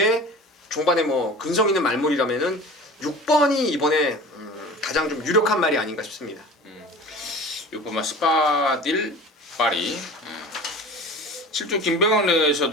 종반에 뭐 근성 있는 말물이라면은 6번이 이번에 가장 좀 유력한 말이 아닌가 싶습니다. 6번마 스파딜 파리. 7주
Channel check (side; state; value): both; normal; correlation 0.39